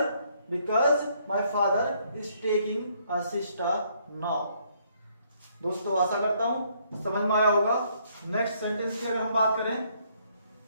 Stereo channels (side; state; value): both; inverted; correlation -0.68